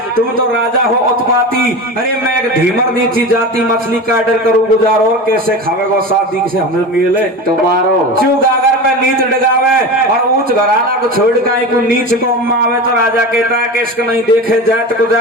तुम तो राजा हो उत्पाती अरे मैं एक धीमर नीची जाती मछली का ऑर्डर करूँ गुजारो कैसे खावेगो शादी से हमें मिले तुम्हारो क्यों गागर में नीच डगावे और ऊंच घराना को छोड़ के को नीच को आवे तो राजा कहता है कि इसको नहीं देखे जात को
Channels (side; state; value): both; normal; correlation 0.28